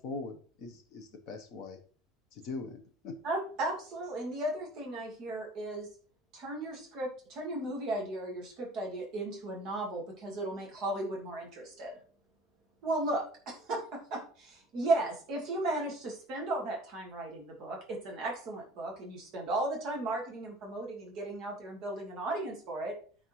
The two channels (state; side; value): normal; both; correlation 0.47